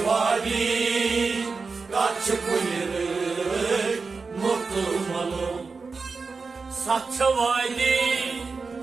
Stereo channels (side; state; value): left; quieter; 4.5 dB